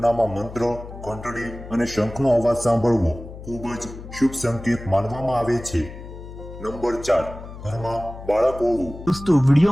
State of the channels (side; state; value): left; noise; hum, 13 dB below the sound